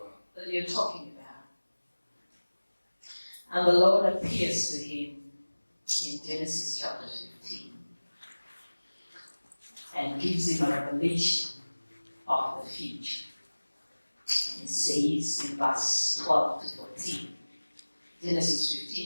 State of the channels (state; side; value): inverted; both; correlation -1.00